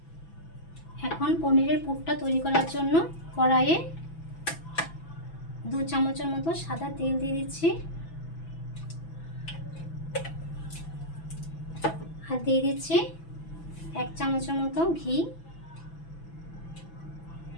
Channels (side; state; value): right; late; 6.0 ms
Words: এখন পনিরের পুরটা তৈরি করার জন্য কড়াইয়ে 2 চামচের মতো সাদা তেল দিয়ে দিচ্ছি, আর দিয়ে দিচ্ছি 1 চামচের মতো ঘি।